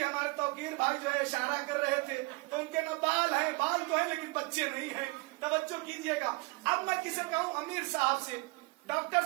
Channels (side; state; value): left; quieter; 27.2 dB